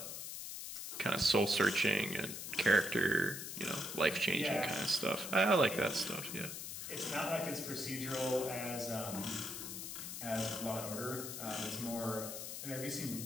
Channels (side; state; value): left; noise; hiss, 7 dB below the sound